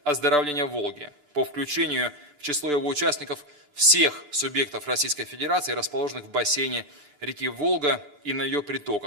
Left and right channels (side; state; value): left; late; 9.7 ms